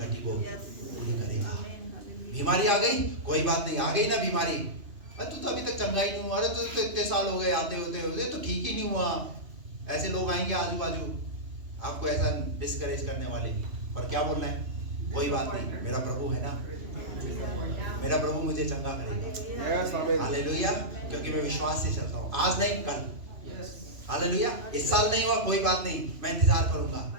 को पूरी करेगा। बीमारी आ गई, कोई बात नहीं, आ गई ना बीमारी, अरे तू तो अभी तक चंगा ही नहीं हुआ, अरे तू तो इतने साल हो गए आते होते तो ठीक ही नहीं हुआ। ऐसे लोग आएंगे आजू बाजू आपको ऐसा डिस्करेज करने वाले, पर क्या बोलना है? कोई बात नहीं, मेरा प्रभु है ना, मेरा प्रभु मुझे चंगा करेगा। हालेलुया। क्योंकि मैं विश्वास से चलता हूँ, आज नहीं कल। हालेलुया। इस साल नहीं हुआ, कोई बात नहीं, मैं इंतजार करूंगा।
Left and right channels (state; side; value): late; left; 3.0 ms